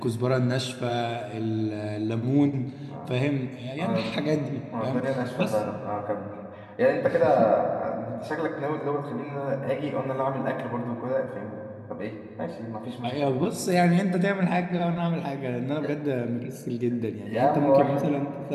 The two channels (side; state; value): both; identical; correlation 1.00